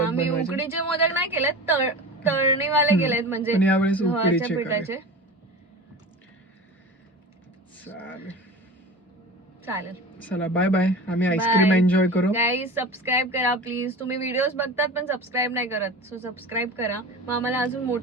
मी बनवायचे? उकडीचे मोदक नाही केले, तळणीवाले केलेत, म्हणजे पण यावेळेस गव्हाच्या उकडीचे पिठाचे. चालेल. चालेल, चला बाय बाय. आम्ही आईस्क्रीम Bye. एन्जॉय करू. गाईज सबस्क्राईब करा प्लीज. तुम्ही व्हिडिओज बघतात पण सबस्क्राईब नाही करत, सो सबस्क्राईब करा. मग आम्हाला अजून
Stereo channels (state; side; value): normal; both; correlation 0.33